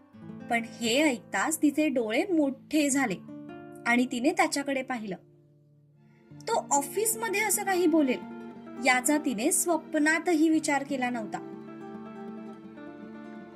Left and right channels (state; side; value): identical; both; correlation 1.00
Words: पण हे ऐकताच तिचे डोळे मोठे झाले आणि तिने त्याच्याकडे पाहिलं. तो ऑफिसमध्ये असं काही बोलेल याचा तिने स्वप्नातही विचार केला नव्हता.